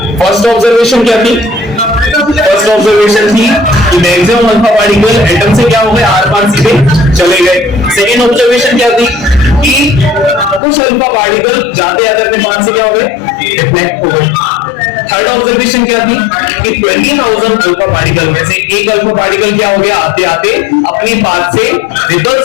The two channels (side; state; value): right; drops out; at 10.6 s